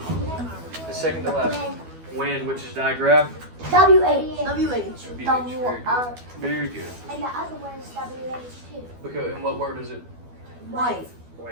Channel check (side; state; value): left; late; 12 ms